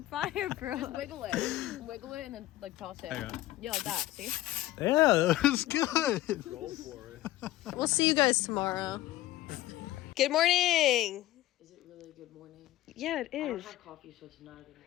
fired, bro. Just wiggle it, and then like toss it. Hang on. Yeah, like that. See? Yeah, that was good. Go for it. We'll see you guys tomorrow. Good morning. Is it really a good morning? Yeah, it I don't is. have coffee, so it's not a good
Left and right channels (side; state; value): right; quieter; 15.4 dB